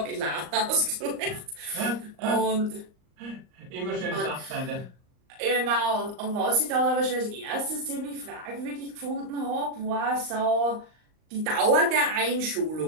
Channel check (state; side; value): late; left; 38 ms